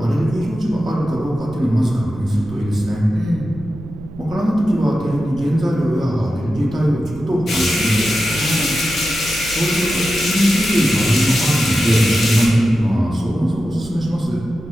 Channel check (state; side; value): noise; right; rumble, 15 dB below the sound